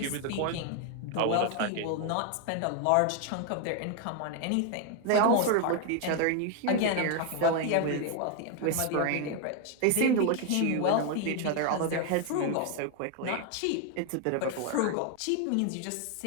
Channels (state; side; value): different; both; correlation 0.01